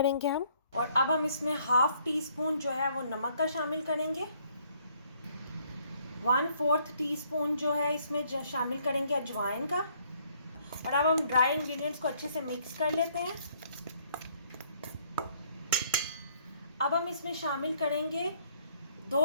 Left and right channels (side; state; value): both; inverted; correlation -0.66